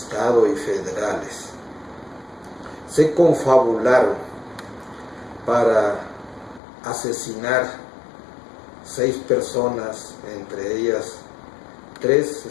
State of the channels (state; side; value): drops out; right; at 6.6 s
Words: y federales se confabularon para asesinar 6 personas, entre ellas 3